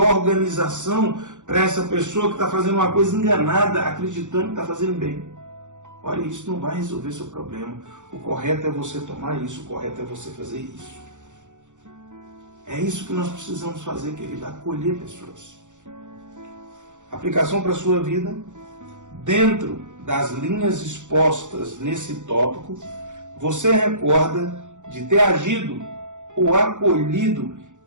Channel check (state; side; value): late; left; 0.85 ms